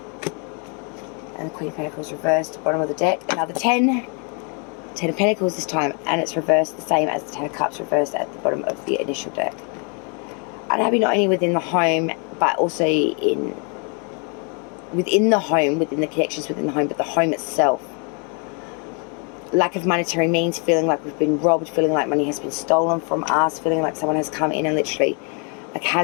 And the Queen of Pentacles reversed, bottom of the deck. Another 10. 10 of Pentacles this time, and it's reversed the same as the 10 of Cups reversed at the bottom of the initial deck. Unhappy not only within the home, but also within the home, within the connections within the home, but the home itself. Lack of monetary means, feeling like we've been robbed, feeling like money has been stolen from us, feeling like someone has come in and literally like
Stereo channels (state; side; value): quieter; right; 36.6 dB